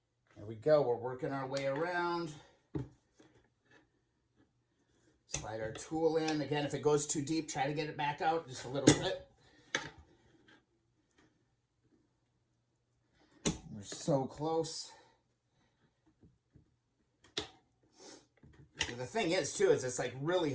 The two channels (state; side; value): identical; both; correlation 1.00